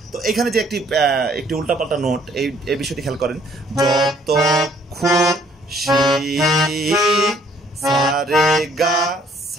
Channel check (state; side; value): normal; both; correlation 0.62